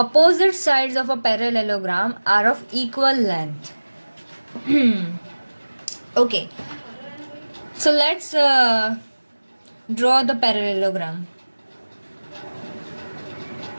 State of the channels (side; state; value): both; inverted; correlation -1.00